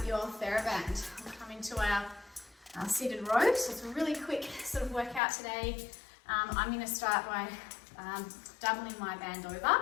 your TheraBand. We'll come into our seated row. So it's a really quick sort of workout today. I'm going to start by doubling my band over.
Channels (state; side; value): drops out; right; at 5.2 s